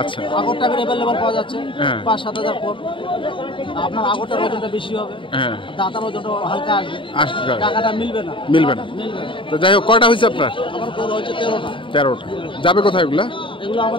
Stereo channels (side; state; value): right; late; 0.25 ms